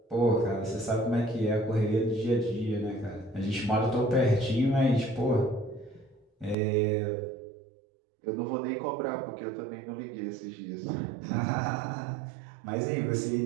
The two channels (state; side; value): drops out; left; at 6.6 s